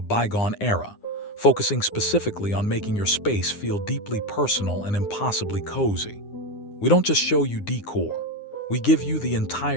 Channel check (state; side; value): late; right; 9.8 ms